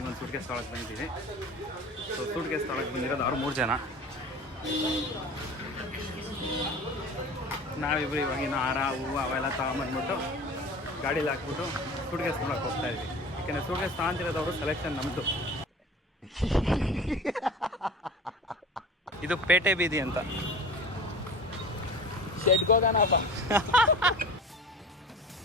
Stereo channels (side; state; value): both; normal; correlation 0.38